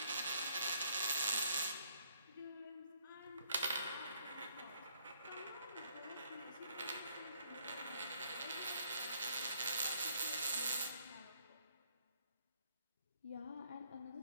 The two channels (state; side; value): inverted; both; correlation -0.66